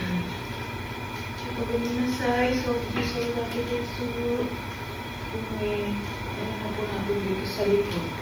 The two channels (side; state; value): right; noise; hiss, 25 dB below the sound